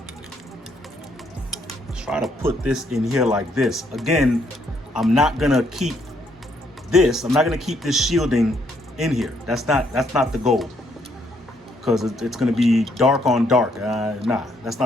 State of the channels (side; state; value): both; normal; correlation 0.71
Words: put this in here like this. Again, I'm not gonna keep this shielding in here. That's not the goal, because it's gonna be dark on dark. Nah, that's